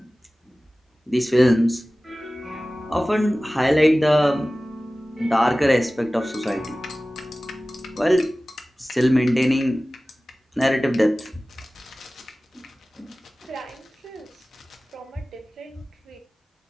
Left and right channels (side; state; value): both; normal; correlation 0.97